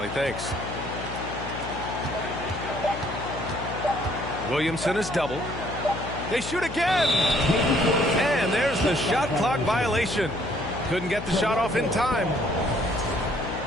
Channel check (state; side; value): noise; left; hum, 9 dB below the sound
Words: Thanks. Williamson is double. They shoot again! And there's the shot clock violation. Couldn't get the shot off in time.